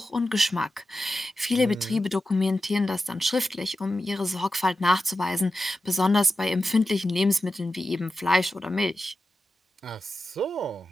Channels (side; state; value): both; normal; correlation 0.91